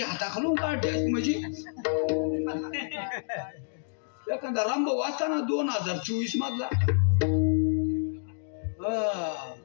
हाताखालून काढते म्हणजे एखादा रामभाऊ वाचताना 2024 मधला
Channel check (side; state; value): right; silent; digital silence